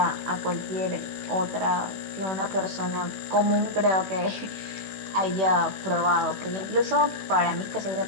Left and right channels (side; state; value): left; late; 16 ms